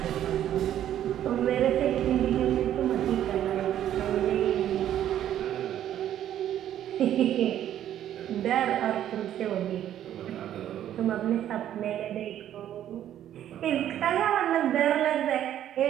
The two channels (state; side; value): quieter; left; 11.2 dB